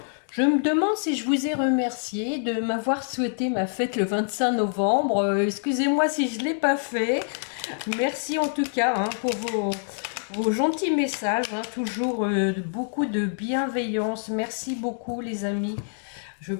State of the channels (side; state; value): right; silent; digital silence